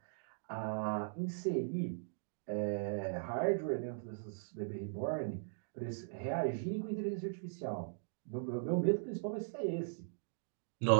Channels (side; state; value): left; silent; digital silence